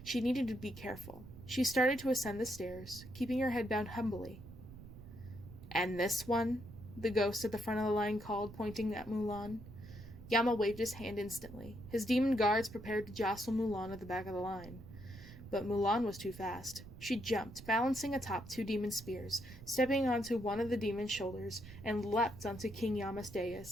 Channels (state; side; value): noise; right; rumble, 15 dB below the sound